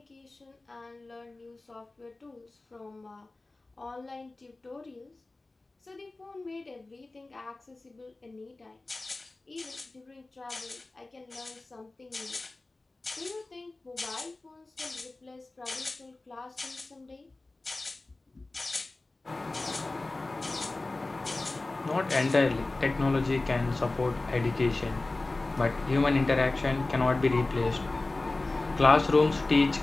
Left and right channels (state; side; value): quieter; right; 3.1 dB